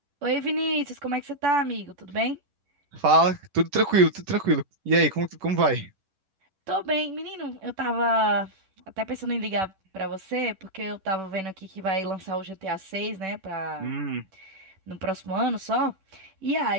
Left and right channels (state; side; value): late; left; 10 ms